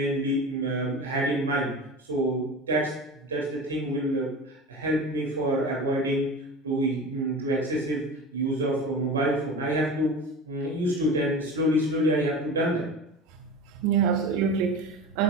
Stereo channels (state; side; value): normal; both; correlation 0.32